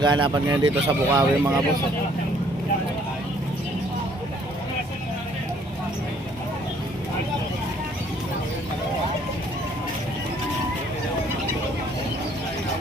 ngayon dito sa Bukawi mga boss.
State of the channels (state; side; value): normal; both; correlation 0.62